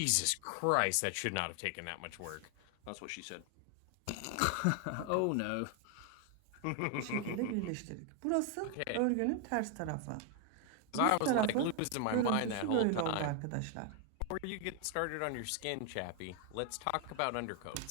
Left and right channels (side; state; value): both; different; correlation 0.00